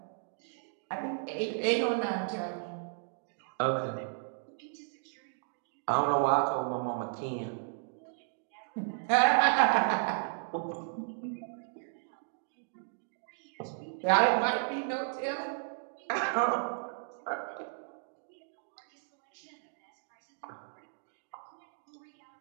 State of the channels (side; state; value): left; silent; digital silence